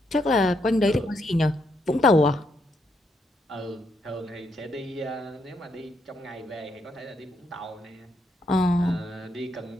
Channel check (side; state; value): both; normal; correlation 0.77